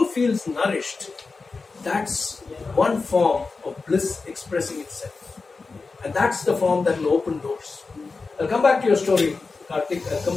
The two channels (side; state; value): right; quieter; 4.2 dB